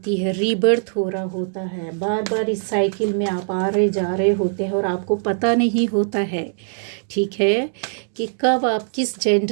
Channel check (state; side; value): silent; left; digital silence